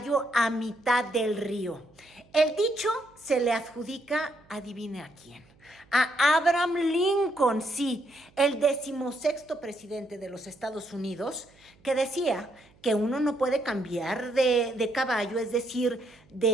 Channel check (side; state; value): right; noise; hum, 30 dB below the sound